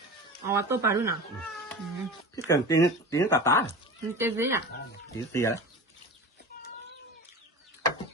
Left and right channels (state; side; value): normal; both; correlation 0.32